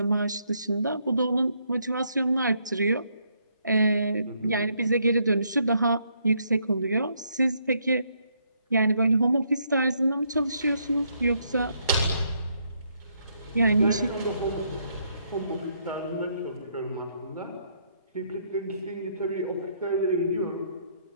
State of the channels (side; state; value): both; inverted; correlation -0.73